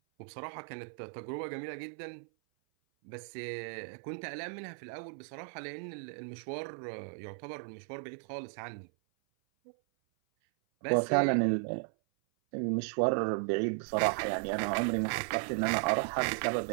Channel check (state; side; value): silent; left; 54 dB below the other